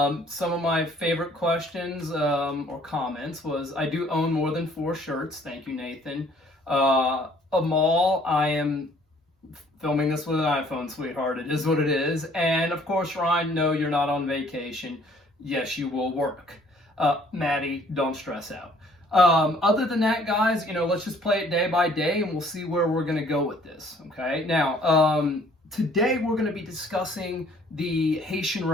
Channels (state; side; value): normal; both; correlation 0.59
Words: of my favorite questions or comments was, I do own more than 4 shirts. Thank you, Nathan. Amal, I am filming this with an iPhone, sweetheart. It is what it is. And of course, Ryan, no, you're not on vacation. Yes, you will work. Maddie, don't stress out. Other than that, guys, let's just play it day by day and we'll see where we're going to go with this. Okay. Now, today we're going to be discussing the Haitian